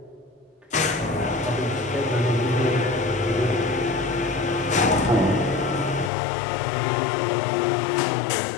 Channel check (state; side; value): drops out; right; at 6.1 s